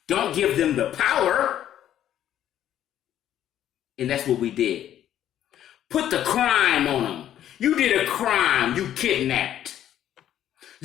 don't give them the power. And that's what we did. Put the crime on them. You did a crime, you kidnapped.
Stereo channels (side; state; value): right; quieter; 11.2 dB